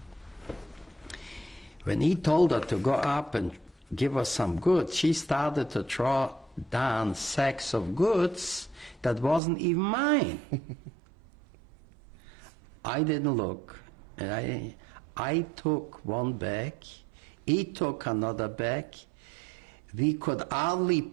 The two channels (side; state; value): left; drops out; at 9.4 s